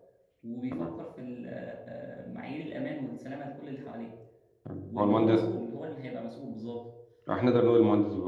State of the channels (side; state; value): both; identical; correlation 1.00